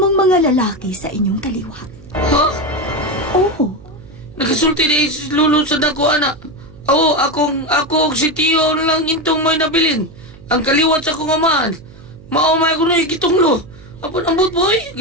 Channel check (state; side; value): noise; right; hum, 21 dB below the sound